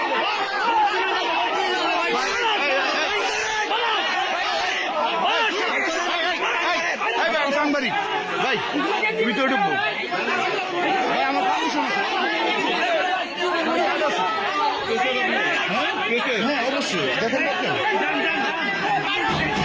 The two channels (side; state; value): both; identical; correlation 1.00